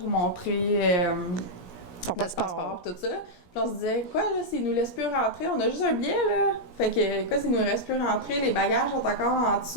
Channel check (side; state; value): right; late; 17 ms